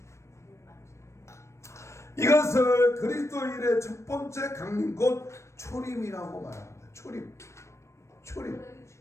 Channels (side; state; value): right; late; 0.13 ms